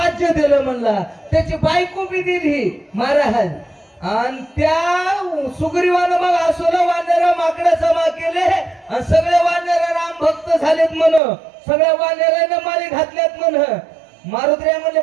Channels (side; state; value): left; drops out; at 11.2 s